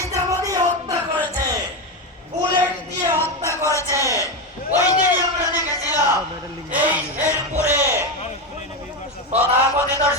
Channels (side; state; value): both; normal; correlation 0.13